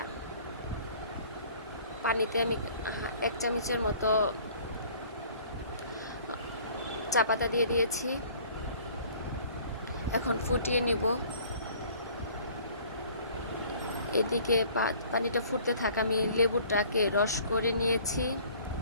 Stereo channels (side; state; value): both; inverted; correlation -0.53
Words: পানিতে আমি 1 চামচের মতো চা পাতা দিয়ে দিয়েছি। এখন ফুটিয়ে নিব। এদিকে পানিটা ফুটতে থাকা আমি লেবুটাকে রস করে নিয়েছি।